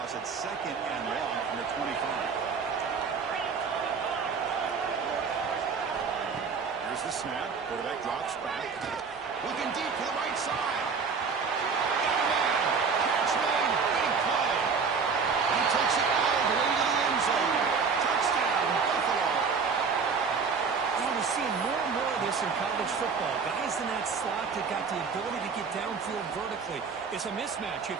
it's second and long from the 25. Here's the snap. Quarterback drops back. Looking deep to the right side. Catch made. Big play. He takes it all the way to the end zone. Touchdown, Buffalo. We're seeing more and more of this in college football. Guys in that slot that got the ability to get downfield vertically. It's a mismatch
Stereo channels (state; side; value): quieter; left; 5.4 dB